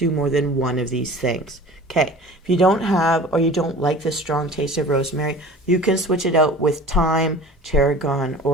more than one of these things. Okay, if you don't have or you don't like the strong taste of rosemary, you can switch it out with thyme, tarragon,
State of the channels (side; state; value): both; normal; correlation 0.42